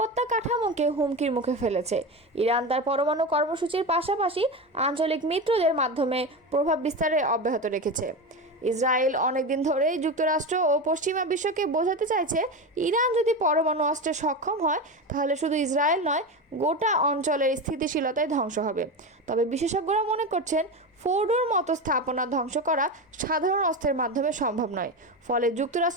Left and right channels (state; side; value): normal; both; correlation 0.21